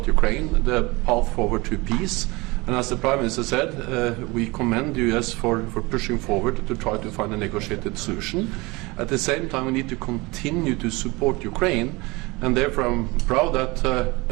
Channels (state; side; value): quieter; left; 24.0 dB